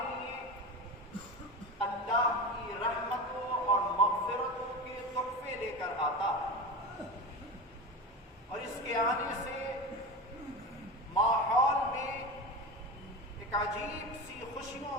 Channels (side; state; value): both; normal; correlation 0.26